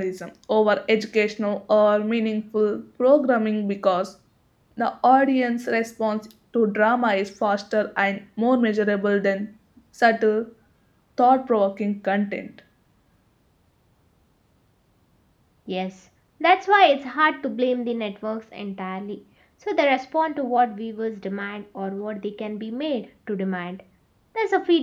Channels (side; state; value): both; identical; correlation 1.00